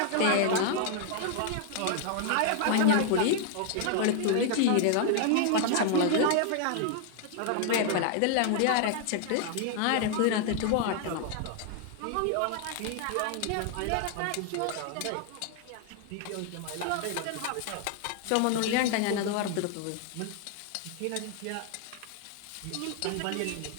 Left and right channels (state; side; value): different; both; correlation 0.00